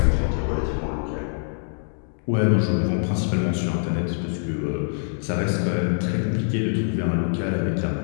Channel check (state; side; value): silent; right; 62 dB below the other